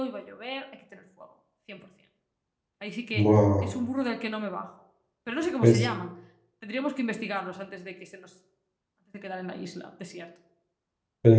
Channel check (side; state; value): both; identical; correlation 1.00